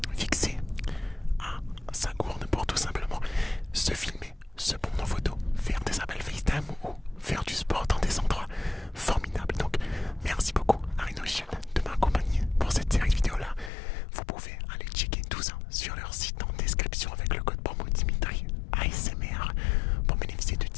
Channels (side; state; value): right; drops out; at 13.7 s